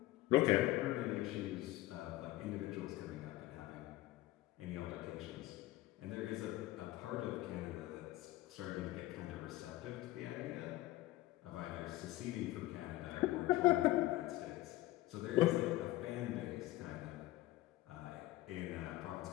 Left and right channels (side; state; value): right; quieter; 17.1 dB